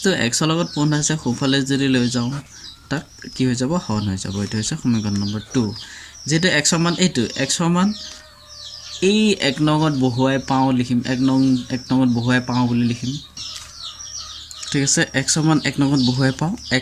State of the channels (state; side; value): identical; both; correlation 1.00